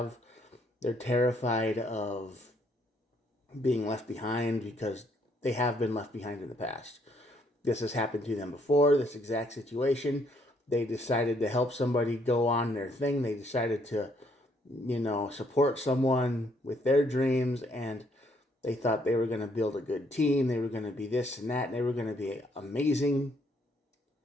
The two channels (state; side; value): normal; both; correlation 0.69